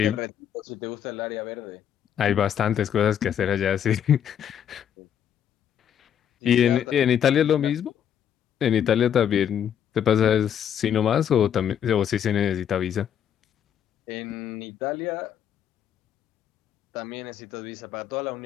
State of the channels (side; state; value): right; quieter; 9.2 dB